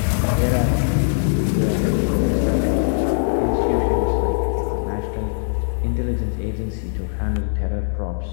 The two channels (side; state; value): right; silent; digital silence